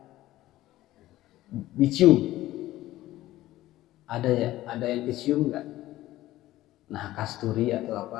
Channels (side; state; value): right; quieter; 15.6 dB